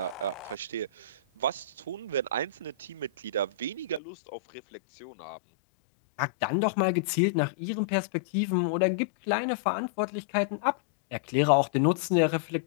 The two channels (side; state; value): right; drops out; at 4.0 s